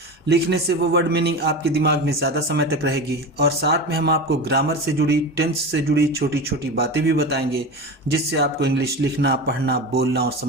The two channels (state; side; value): normal; both; correlation 0.26